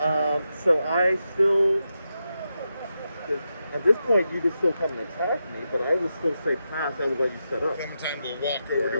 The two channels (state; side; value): inverted; both; correlation -0.87